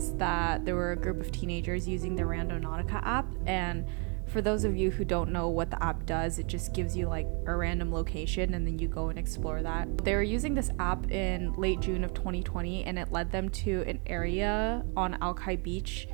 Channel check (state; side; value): quieter; left; 36.2 dB